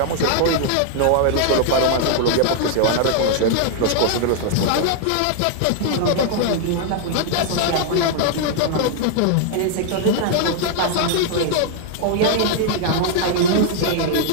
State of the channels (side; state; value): both; different; correlation 0.00